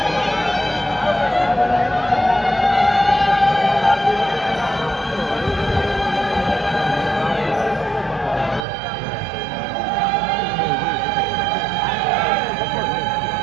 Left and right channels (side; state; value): left; drops out; at 8.7 s